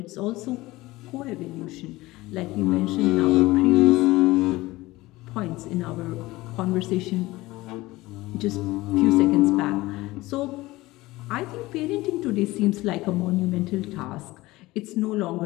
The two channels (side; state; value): right; quieter; 19.3 dB